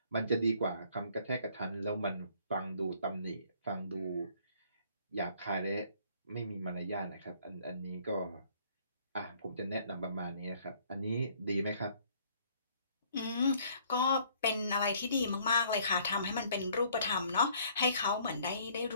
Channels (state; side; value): inverted; both; correlation -0.61